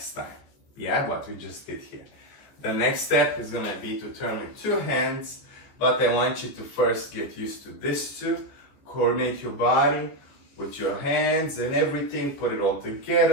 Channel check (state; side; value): late; right; 14 ms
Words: time. Yeah, what we just did here. The next step is gonna be to turn with 2 hands, but I want you to first get used to this too. Coordinate your body with your hands and everything, put it all